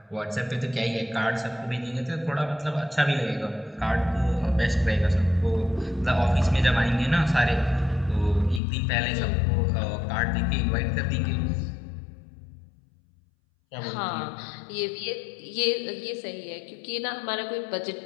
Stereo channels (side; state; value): right; drops out; at 8.6 s